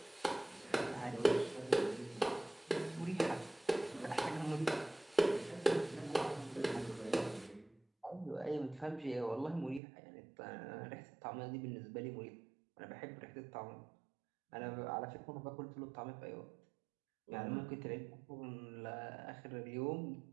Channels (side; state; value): left; drops out; at 9.8 s